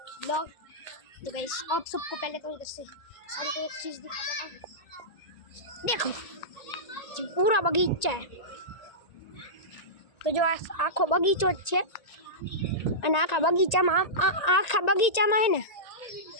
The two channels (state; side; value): late; right; 1.9 ms